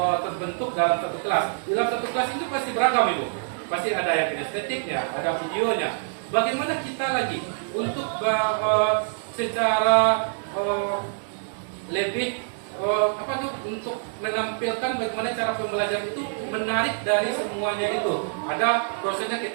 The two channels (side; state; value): left; silent; digital silence